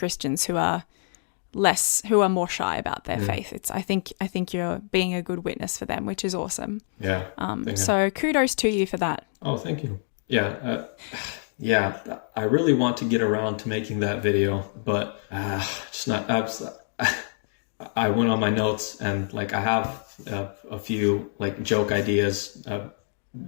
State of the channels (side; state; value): right; silent; digital silence